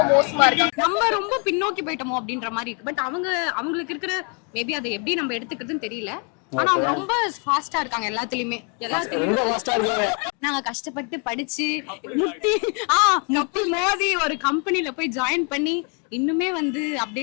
மோசமா இருக்கு. நம்ம ரொம்ப பின்னோக்கி போயிட்டோமோ அப்படின்ற மாதிரி இருக்கு. பட் அவங்களுக்கு இருக்கிற மேபி அதை எப்படி நம்ம எடுத்துக்கிறதுன்னு தெரியல. ஆனா அவங்க ரொம்ப ஃபாஸ்டா இருக்காங்க எல்லாத்துலயுமே. நாங்க கஷ்டப்பட்டு படிச்சு முட்டி மோதி ஒரு கம்பெனில போய் ஜாயின் பண்ணி இன்னுமே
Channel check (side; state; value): right; quieter; 37.1 dB